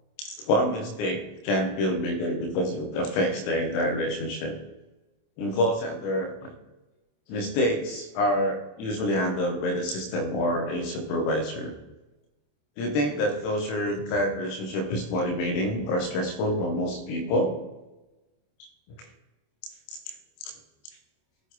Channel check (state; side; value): late; right; 27 ms